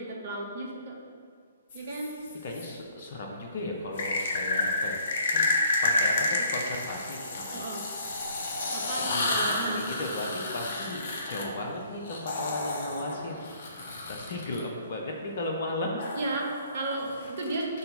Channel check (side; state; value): both; inverted; correlation -0.59